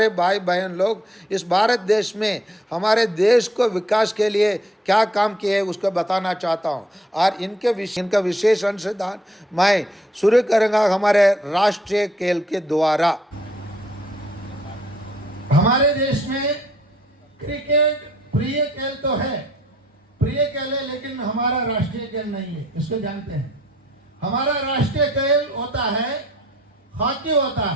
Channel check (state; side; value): normal; both; correlation 0.66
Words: भाई बहन लोग इस भारत देश में हमारे देश को विकास के लिए क्या काम किए उसको बताना चाहता हूँ। और इनका विशेष अंशदान मैं शुरू करूँगा हमारे राष्ट्रीय खेल के द्वारा। हमारे देश में क्रिकेट प्रिय खेल तो है, प्रिय खेल है, लेकिन हमारा राष्ट्रीय खेल नहीं है, इसको जानते हैं। हमारा राष्ट्रीय खेल होता है हॉकी होता